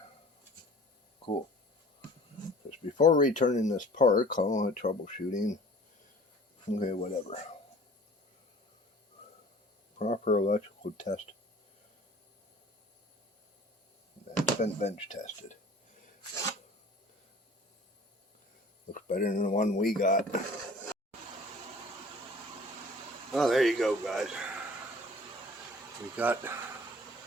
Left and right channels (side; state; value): both; normal; correlation 0.48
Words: Cool. Just before returning this part, call it troubleshooting. Okay, whatever. Proper electrical test. It's been bench tested. Looks better than the one we got. Oh, there you go, guys. We got the